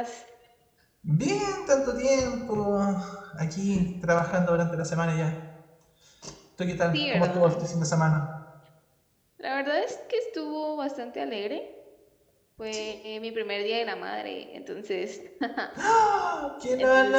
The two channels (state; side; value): identical; both; correlation 1.00